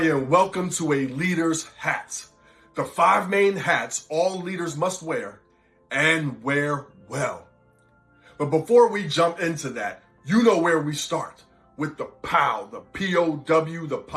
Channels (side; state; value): both; identical; correlation 1.00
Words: welcome to A Leader's Hat. The 5 main hats all leaders must wear and wear well. But before we jump into that, you know where we start with the POW, the P-O-W, the